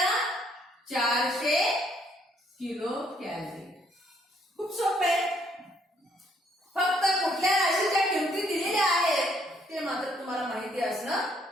400 किलो कॅलरी. खूप सोपं आहे. फक्त कुठल्या राशीच्या किमती दिलेल्या आहेत ते मात्र तुम्हाला माहिती असणं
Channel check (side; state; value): both; normal; correlation 0.68